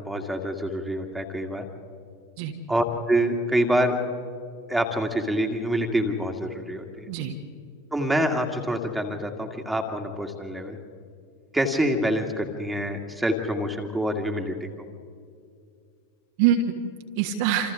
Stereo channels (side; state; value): both; normal; correlation 0.57